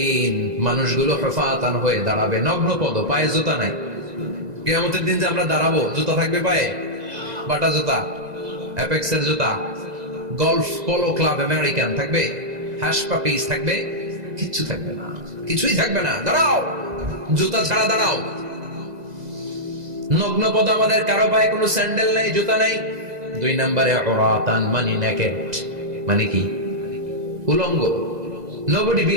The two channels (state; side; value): late; left; 2.0 ms